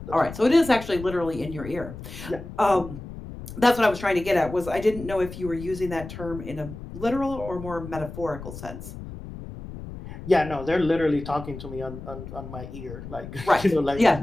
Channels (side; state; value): left; noise; rumble, 12 dB below the sound